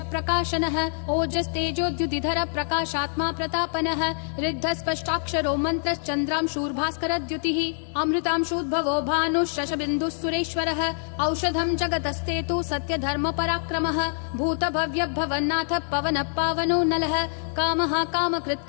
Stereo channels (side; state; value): right; silent; digital silence